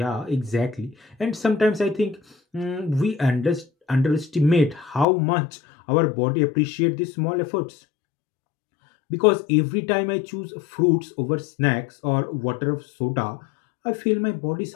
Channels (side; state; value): right; drops out; at 5.1 s